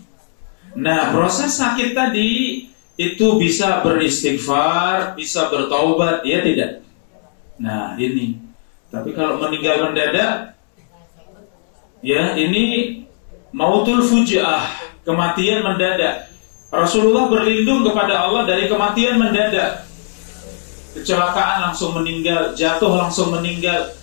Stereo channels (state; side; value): silent; right; 68 dB below the other